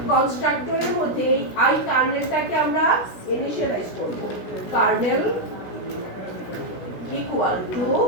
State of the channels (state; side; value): late; right; 16 ms